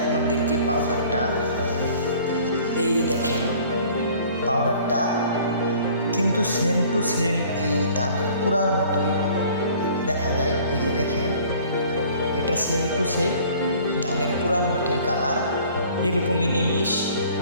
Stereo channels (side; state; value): both; inverted; correlation -0.52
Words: পাউডারটা, এই যে দেখেন পাউডারটা কিন্তু সেম টু সেম এই ধানের কুড়ার মতোই দেখা যায়। এই যে দেখেন, এটা সেম টু সেম ধানের কুড়ার মতোই কালার, এরকমই নিমিষ।